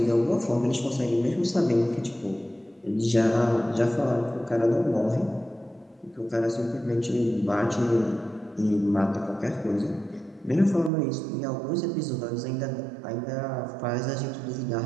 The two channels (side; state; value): left; drops out; at 10.9 s